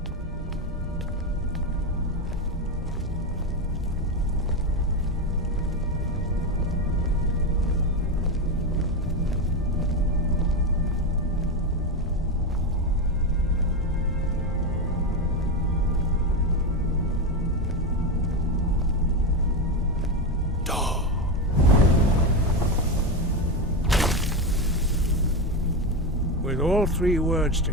With all three words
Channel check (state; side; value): normal; both; correlation 0.13